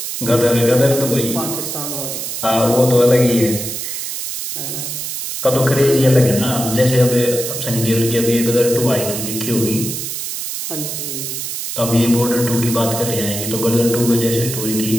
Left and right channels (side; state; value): right; noise; hiss, 5 dB below the sound